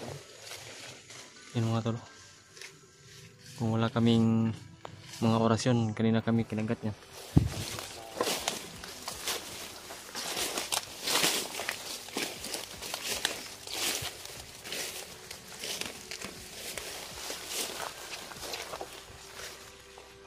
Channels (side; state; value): both; identical; correlation 1.00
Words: Yan mga tol. Kung wala kaming mga orasyon, kanina kami kinagat niya.